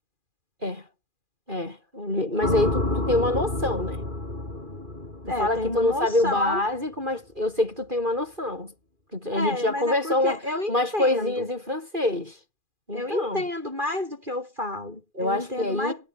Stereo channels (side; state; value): left; late; 2.4 ms